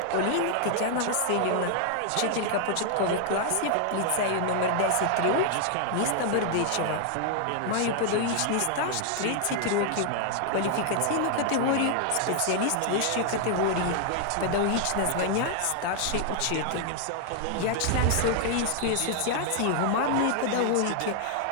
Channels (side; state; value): both; different; correlation 0.00